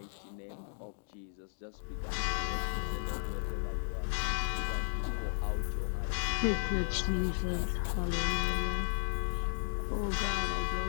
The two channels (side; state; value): right; silent; digital silence